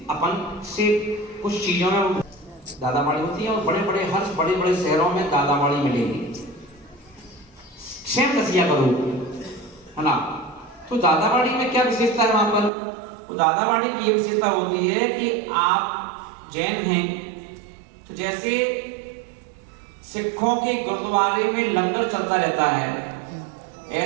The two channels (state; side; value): drops out; left; at 12.7 s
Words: अपन से कुछ चीजों में दादामाड़ी होती है और बड़े बड़े हर बड़े बड़े शहरों में दादामाड़ी मिलेगी, सेम दसिया करो, है ना। तो दादावाड़ी में क्या विशेषता है वहां पर? तो दादावाड़ी की ये विशेषता होती है कि आप जैन हैं तो जैसे सिखों के गुरुद्वारे में लंगर चलता रहता है,